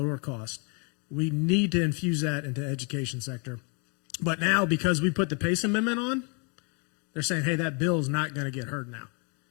cost. We need to infuse that into the education sector. But now, because we put the PACE amendment on, they're saying, hey, that bill is not going to get heard now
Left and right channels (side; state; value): right; quieter; 35.7 dB